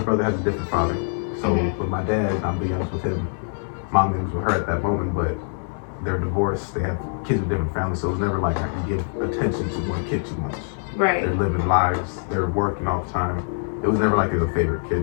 brother has a different father. So with my dad, I'm the youngest with him. Mom was with her at that moment, but they're divorced. They have kids with different families, so it was never like I could give attention to one kid too much. Right. They're living lives. They're working all the time. It was never like they were a favorite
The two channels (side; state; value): right; silent; 63 dB below the other